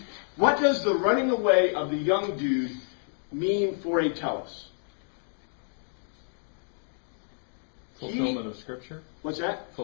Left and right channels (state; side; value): silent; right; 59 dB below the other